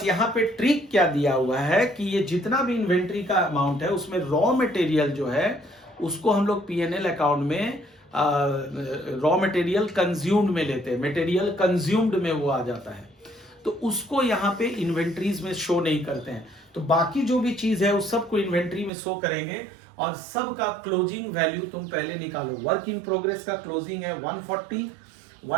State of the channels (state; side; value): drops out; left; at 18.9 s